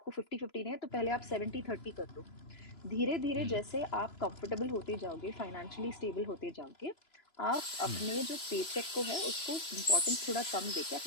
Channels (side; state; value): right; late; 3.0 ms